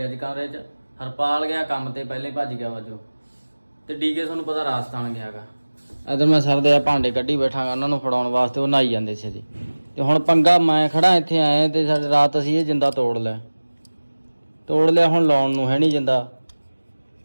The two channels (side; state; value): both; inverted; correlation -1.00